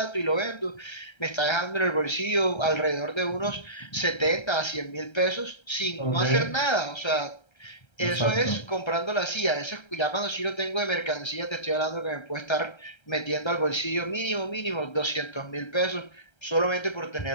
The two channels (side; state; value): right; late; 1.3 ms